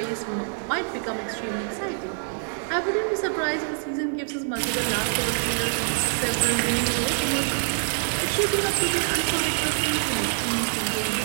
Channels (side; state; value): left; silent; 58 dB below the other